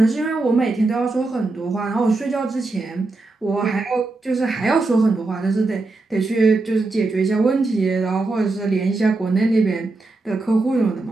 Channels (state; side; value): quieter; left; 3.3 dB